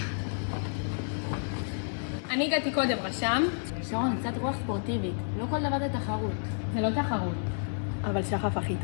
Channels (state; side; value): silent; right; digital silence